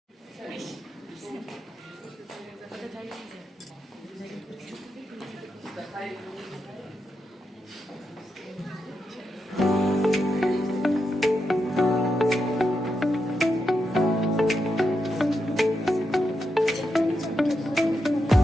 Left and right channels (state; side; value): normal; both; correlation 0.85